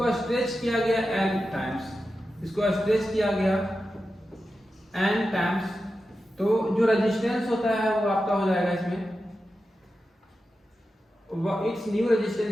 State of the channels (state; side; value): normal; both; correlation 0.91